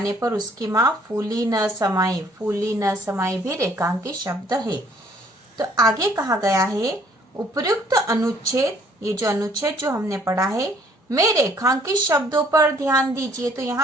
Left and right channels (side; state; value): both; normal; correlation 0.60